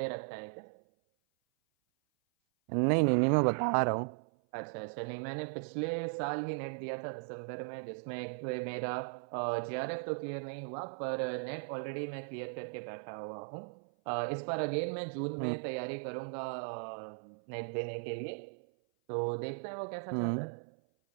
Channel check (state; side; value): silent; left; 53 dB below the other